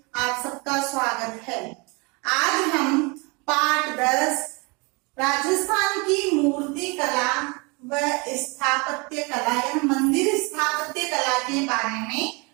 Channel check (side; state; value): left; quieter; 29.0 dB